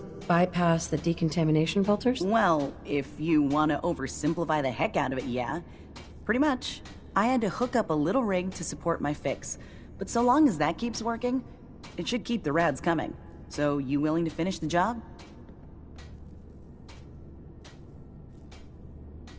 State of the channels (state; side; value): identical; both; correlation 1.00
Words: bypass the decontamination filters? Well, if you want to oversimplify the heck out of it, yeah. Pretty much. I had to hook up a little rig to support my fix. But so long as that keeps working, it should keep the rads coming. So, you willing to finish the job?